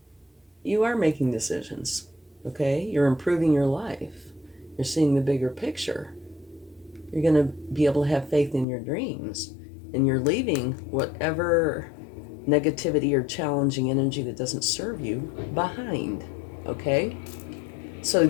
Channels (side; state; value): right; drops out; at 8.7 s